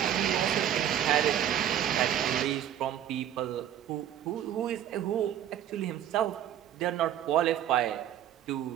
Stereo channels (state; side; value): quieter; left; 10.7 dB